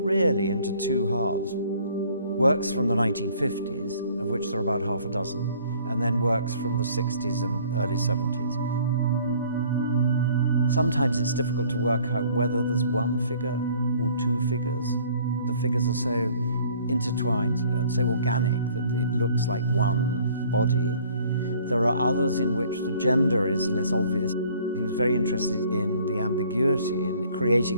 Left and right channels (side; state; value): both; inverted; correlation -0.56